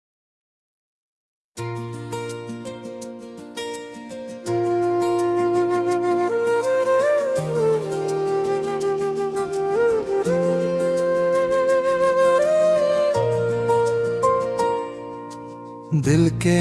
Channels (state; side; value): identical; both; correlation 1.00